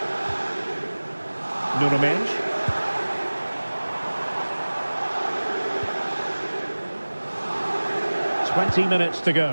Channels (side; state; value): both; inverted; correlation -1.00